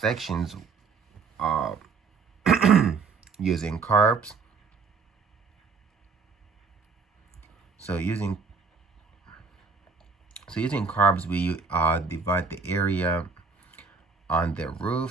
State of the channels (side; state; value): left; quieter; 5.0 dB